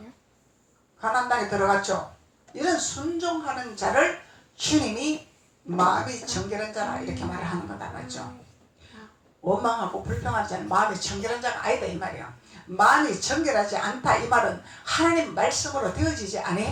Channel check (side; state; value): both; identical; correlation 1.00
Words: 가나안 땅에 들어갔죠. 이런 순종하는 자를 주님이 마음이 정결한 자라 이렇게 말하는 거다 맞죠. 원망하고 불평하는 자는 마음이 정결한 자가 아니다 이 말이야. 마음이 정결하지 않다 이 말은 하나님 말씀으로 되어지지